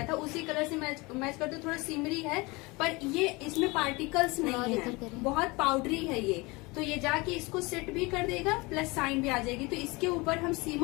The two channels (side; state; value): right; quieter; 24.8 dB